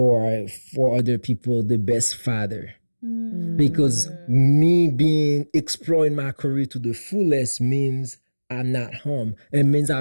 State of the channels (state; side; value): inverted; both; correlation -1.00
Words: for other people the best father. Because me being exploring my career to the fullest means I'm not home. It means